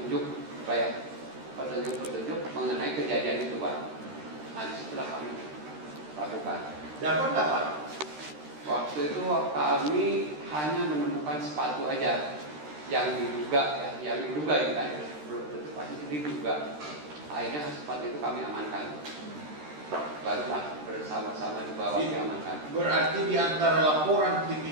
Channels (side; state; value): left; late; 13 ms